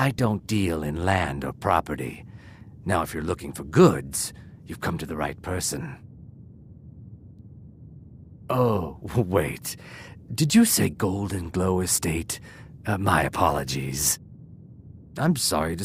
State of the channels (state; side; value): identical; both; correlation 1.00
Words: don't deal in land or property. Now, if you're looking for goods, you've come to the right person. Oh, wait. Did you say 𝘼𝙗𝙘𝙪𝙗 estate? My apologies. I'm sorry to